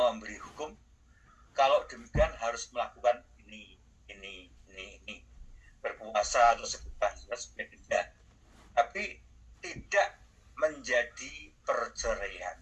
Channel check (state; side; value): identical; both; correlation 1.00